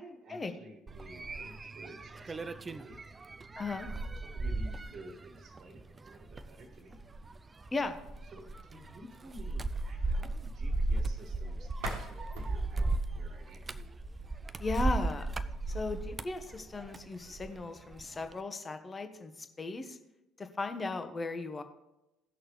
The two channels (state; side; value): normal; both; correlation 0.85